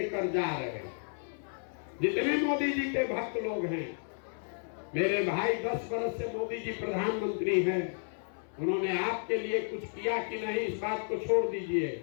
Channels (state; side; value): silent; right; 56 dB below the other